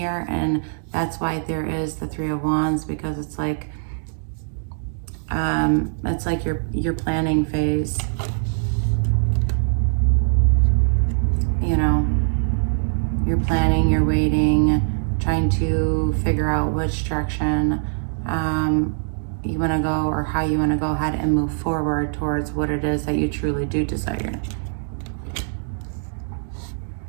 and that's why there is the Three of Wands, because it's like your planning phase. You know, you're planning, you're waiting, trying to figure out which direction you want to go, or how you want to go ahead and move forward towards what it is that you truly do desire.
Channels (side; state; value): left; silent; digital silence